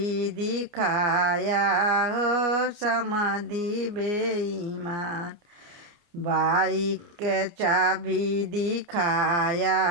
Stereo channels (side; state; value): left; late; 29 ms